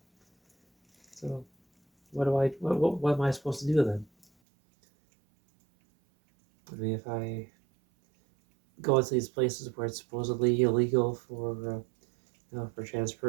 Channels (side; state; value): left; drops out; at 4.2 s